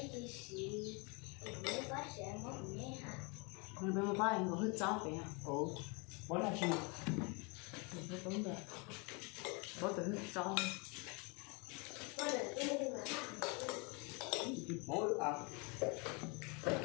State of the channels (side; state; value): right; quieter; 31.1 dB